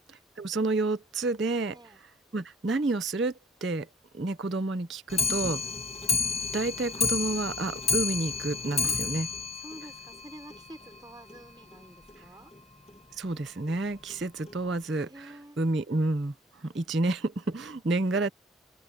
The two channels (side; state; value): both; normal; correlation 0.49